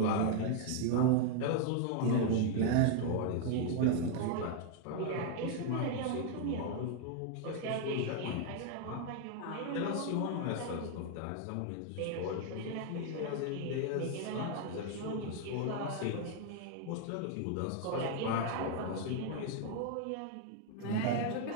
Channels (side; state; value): both; different; correlation 0.00